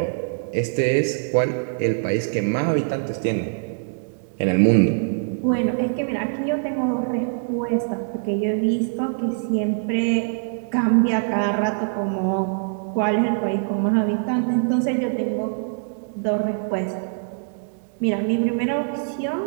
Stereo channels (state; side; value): silent; left; digital silence